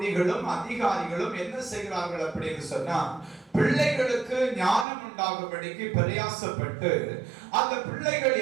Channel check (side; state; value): left; drops out; at 4.9 s